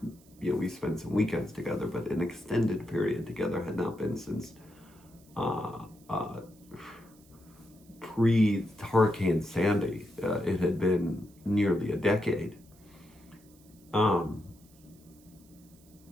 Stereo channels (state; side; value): noise; right; hiss, 28 dB below the sound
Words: you know, we spent some weekends together, but an extended period together had not been since pre-Hurricane Sandy. It had been nearly a decade. And